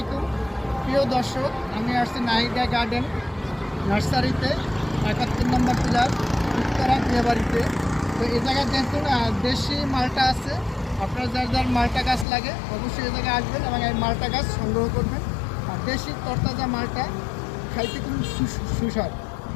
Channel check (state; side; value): drops out; right; at 12.2 s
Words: প্রিয় দর্শক, আমি আসছি নাহিদা গার্ডেন নার্সারিতে 71 নম্বর পিলার উত্তরা বিয়েবাড়িতে। তো এই জায়গায় দেখুন দেশি মালটা আছে। আপনার যার যার মালটা গাছ লাগে অবশ্যই এই জায়গায় আসবেন এবং এই মালটা গাছ সংগ্রহ করবেন। আর দেশি তরতাজা মালটা খাইতে খুব সুস্বাদু।